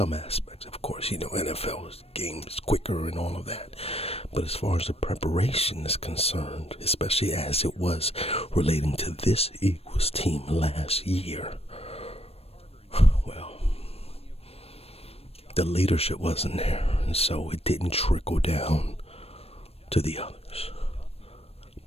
aspects, of course, NFL game is quicker and all of that. But as far as the preparation is concerned, especially as it was relating to this Eagles team last year, well, the leadership wasn't there, and so it didn't trickle down to the others.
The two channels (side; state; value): right; late; 0.29 ms